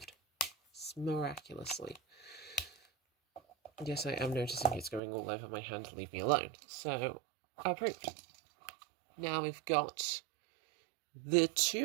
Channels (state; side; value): drops out; left; at 5.0 s